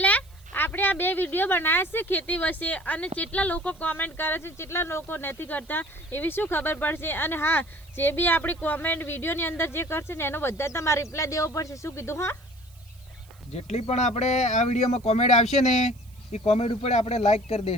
આપણે આ બે વિડીયો બનાવ્યા છે ખેતી વિશે અને કેટલા લોકો કોમેન્ટ કરે છે કેટલા લોકો નથી કરતા એવી શું ખબર પડશે અને હા જે બી આપણી કોમેન્ટ વિડીયોની અંદર જે કરશે ને એનો બધા તમારે રિપ્લાય દેવો પડશે શું કીધું હા જેટલી પણ આપણે આ વિડીયોમાં કોમેન્ટ આવશે ને એ કોમેન્ટ ઉપર આપણે લાઈક કરી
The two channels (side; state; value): right; noise; hiss, 28 dB below the sound